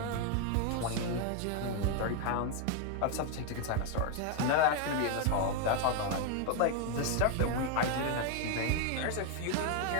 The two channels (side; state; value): both; different; correlation 0.01